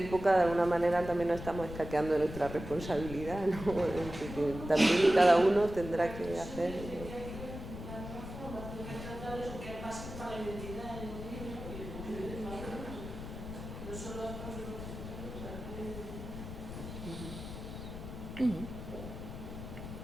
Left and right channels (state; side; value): noise; left; rumble, 9 dB below the sound